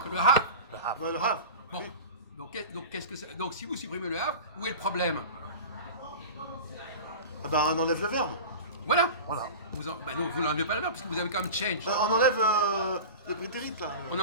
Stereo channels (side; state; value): both; inverted; correlation -0.32